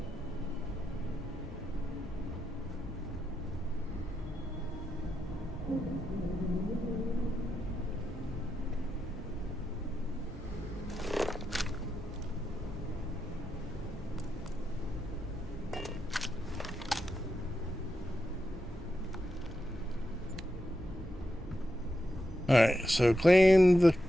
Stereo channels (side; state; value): both; normal; correlation 0.86